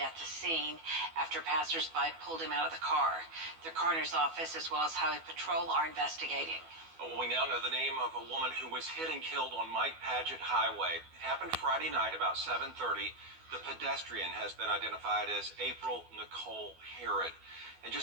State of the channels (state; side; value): late; left; 12 ms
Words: the scene after passersby pulled him out of the car. The coroner's office as well as Highway Patrol are investigating. Well, we now know the name of a woman who was hit and killed on Mike Paget Highway. It happened Friday night about 7:30. The pedestrian has been identified as April Nicole Herod. And